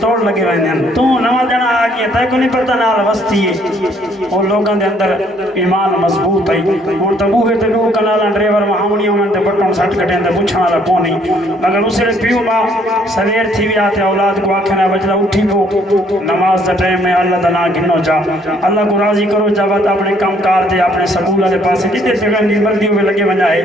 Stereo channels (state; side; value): normal; both; correlation 0.64